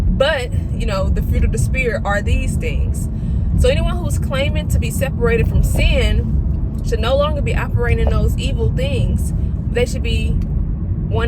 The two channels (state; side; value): identical; both; correlation 1.00